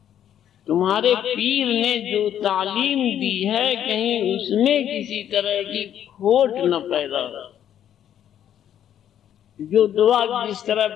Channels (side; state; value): right; quieter; 10.2 dB